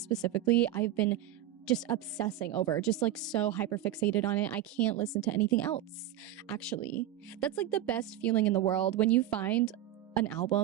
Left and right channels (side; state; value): left; quieter; 12.5 dB